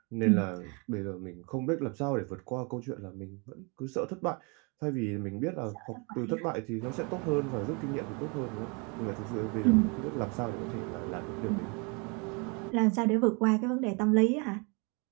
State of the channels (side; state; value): left; quieter; 32.2 dB